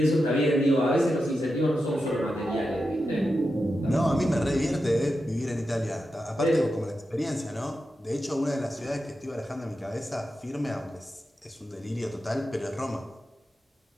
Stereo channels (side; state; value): both; normal; correlation 0.89